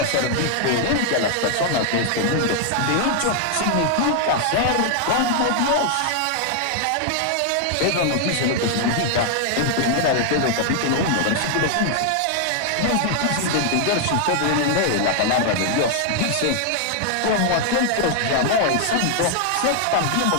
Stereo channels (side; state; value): both; different; correlation 0.00